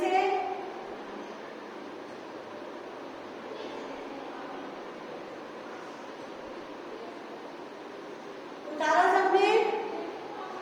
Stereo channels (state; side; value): identical; both; correlation 1.00